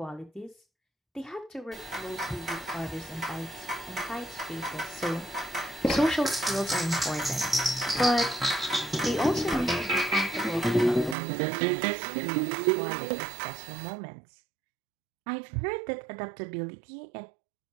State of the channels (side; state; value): left; drops out; at 11.2 s